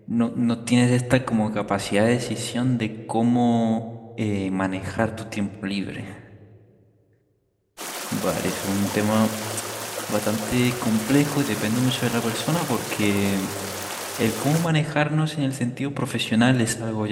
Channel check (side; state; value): both; identical; correlation 1.00